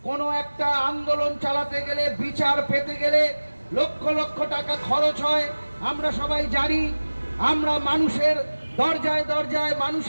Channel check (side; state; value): both; inverted; correlation -1.00